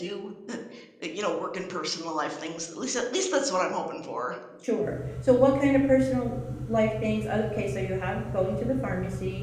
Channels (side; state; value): both; identical; correlation 1.00